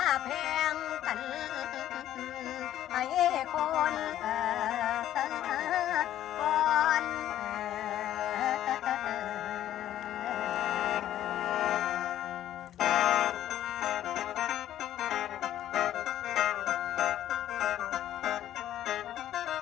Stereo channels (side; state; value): right; quieter; 12.2 dB